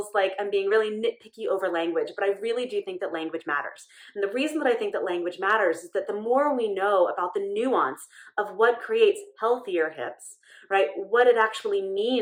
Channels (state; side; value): identical; both; correlation 1.00